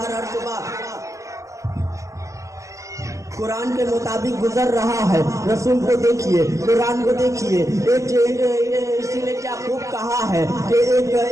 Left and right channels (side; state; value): left; late; 0.16 ms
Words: شعبہ قرآن کے مطابق گزر رہا ہے. رسول کو دیکھیے, قرآن کو دیکھیے. اسی نے کیا خوب کہا ہے کہ